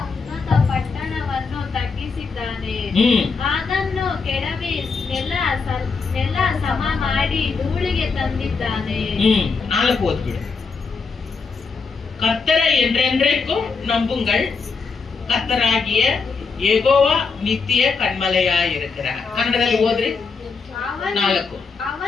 ಉನ್ನತ ಪಟ್ಟಣವನ್ನು ತಗ್ಗಿಸಿದ್ದಾನೆ. ಅದನ್ನು ಕೆಡವಿ ನೆಲ ಸಮ ಮಾಡಿ ಧೂಳಿಗೆ ತಂದಿದ್ದಾನೆ. 4 ಓದ್ಬಿಡು. கர்த்தரை என்றென்றைக்கும் நம்புங்கள், கர்த்தராகிய யெகோவா நித்திய கண்மலையாயிருக்கிறார். ಕನ್ನಡದಲ್ಲಿ ಓದ್ರಿ. 4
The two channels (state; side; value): quieter; right; 4.8 dB